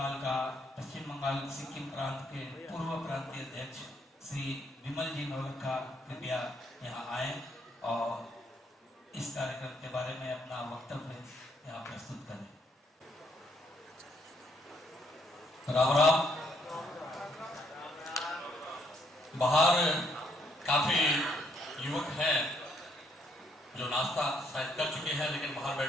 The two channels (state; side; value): normal; both; correlation 0.71